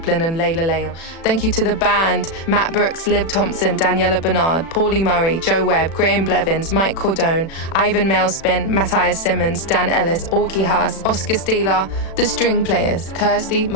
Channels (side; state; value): right; late; 36 ms